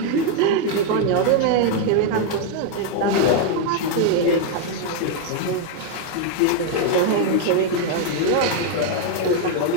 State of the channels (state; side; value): different; both; correlation 0.01